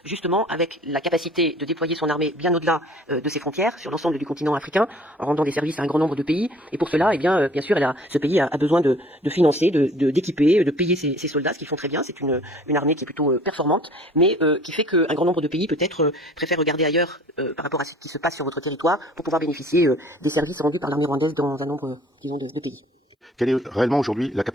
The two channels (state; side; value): normal; both; correlation 0.51